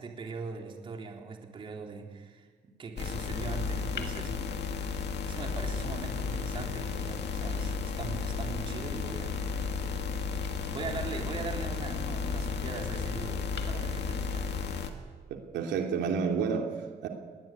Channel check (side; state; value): both; normal; correlation 0.46